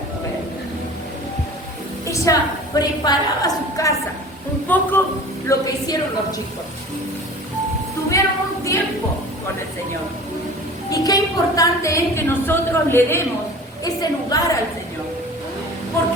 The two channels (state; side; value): normal; both; correlation 0.41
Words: mujer? Ella preparaba su casa, un poco lo que hicieron los chicos. Tuvieron un tiempo con el Señor. Y qué importante es que nosotros le demos ese lugar al Señor.